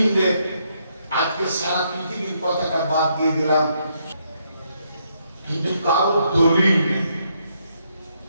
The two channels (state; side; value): inverted; both; correlation -0.75